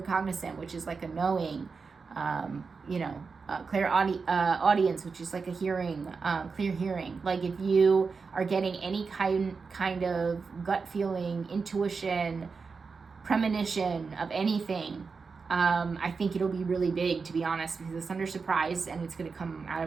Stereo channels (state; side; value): quieter; left; 4.9 dB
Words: which is like a knowing, clear audience, which is like a hearing, clear hearing. Like if you are getting any kind of gut feeling, intuition, premonition of anything, I think it'll be really big, to be honest, because it's under surprise and it's going to come out